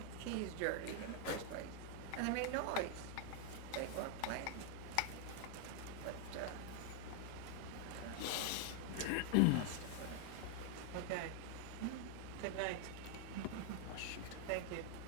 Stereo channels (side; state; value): both; different; correlation 0.00